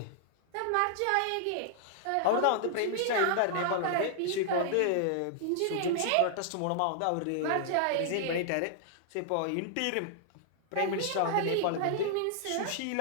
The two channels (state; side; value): different; both; correlation -0.01